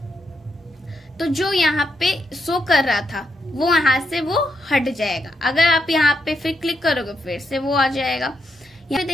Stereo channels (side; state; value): both; normal; correlation 0.81